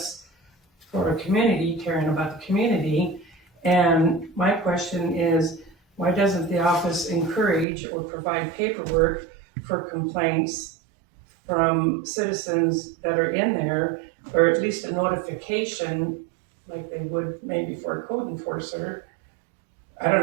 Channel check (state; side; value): drops out; left; at 7.7 s